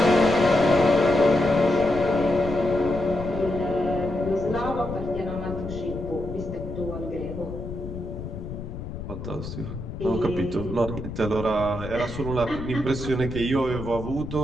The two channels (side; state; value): left; noise; rumble, 9 dB below the sound